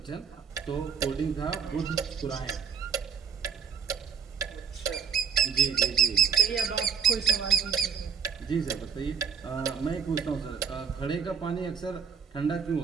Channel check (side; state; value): left; quieter; 6.8 dB